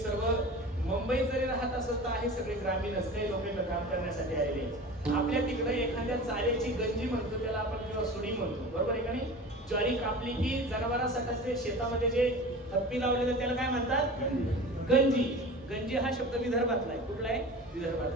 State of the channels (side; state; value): both; normal; correlation 0.35